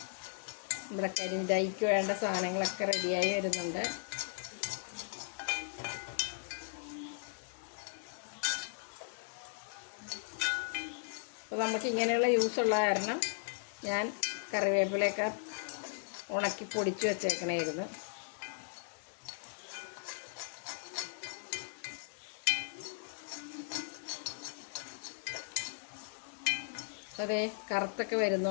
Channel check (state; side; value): silent; right; digital silence